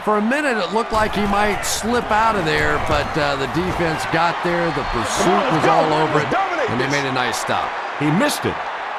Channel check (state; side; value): identical; both; correlation 1.00